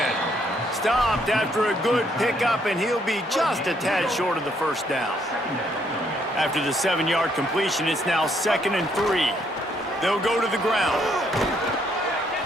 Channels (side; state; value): both; normal; correlation 0.70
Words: Stopped after a good pickup, and he'll be just a tad short of the 1st down. After the 7-yard completion, it's now 2nd and 3. They'll go to the ground.